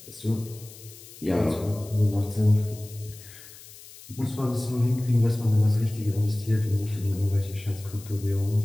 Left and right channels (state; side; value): noise; left; hiss, 19 dB below the sound